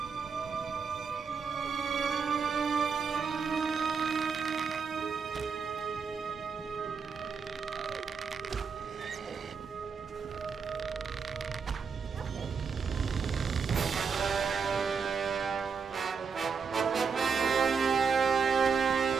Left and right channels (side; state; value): left; quieter; 5.7 dB